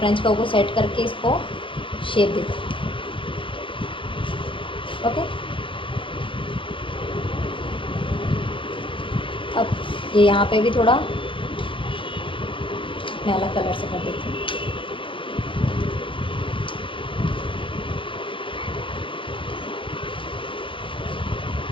कर्व को सेट करके इसको शेप देते। ओके, अब ये यहाँ पे भी थोड़ा मैं अलग कलर से कर देती हूँ।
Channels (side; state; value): right; late; 0.25 ms